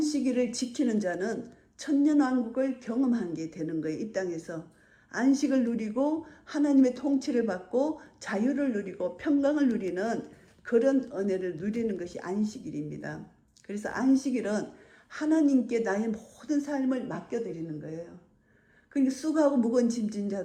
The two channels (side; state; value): both; identical; correlation 1.00